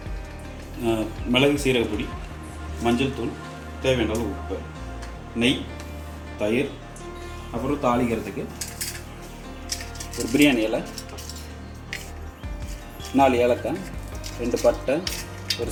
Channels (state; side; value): identical; both; correlation 1.00